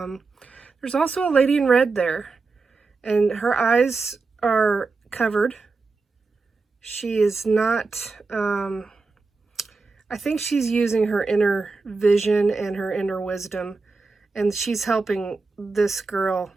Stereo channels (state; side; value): quieter; left; 4.1 dB